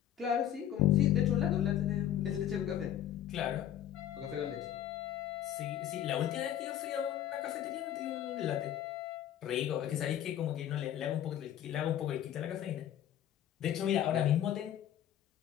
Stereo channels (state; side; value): quieter; right; 11.1 dB